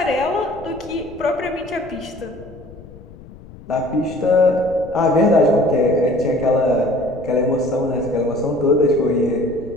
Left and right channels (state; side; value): noise; left; rumble, 19 dB below the sound